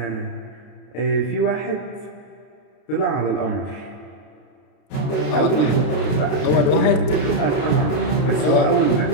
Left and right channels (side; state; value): right; late; 33 ms